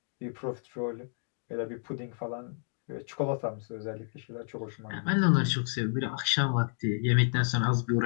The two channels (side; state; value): right; silent; digital silence